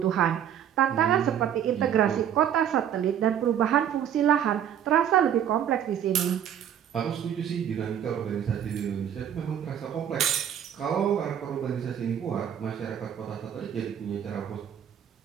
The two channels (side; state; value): left; quieter; 9.5 dB